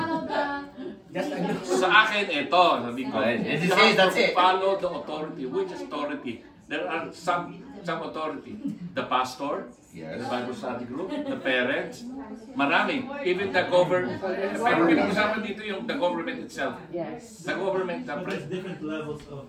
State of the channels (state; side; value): identical; both; correlation 1.00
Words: Sa akin, ito. Sabi ko, that's it. Follow the authority. Which authority? There are some authority. The pastor, the Bible study group, the parents, marami. Even the government. Pero pinag-usapan dito yung the government itself. Yes. The government, the There's different levels